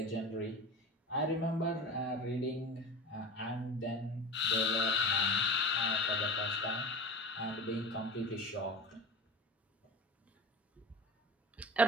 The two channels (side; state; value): both; normal; correlation 0.33